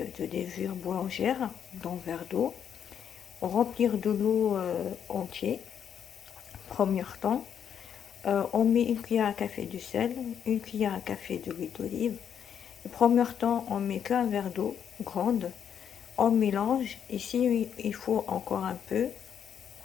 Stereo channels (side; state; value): right; quieter; 8.4 dB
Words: de levure boulangère dans un verre d'eau. Remplir de l'eau entier. Premier temps, on met une cuillère à café de sel, une cuillère à café d'huile d'olive. Le premier temps, on met qu'un verre d'eau grande. On mélange. Ici, il faut encore un peu.